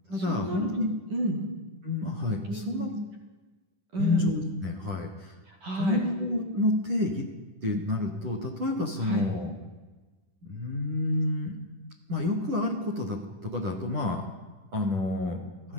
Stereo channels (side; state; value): left; late; 10 ms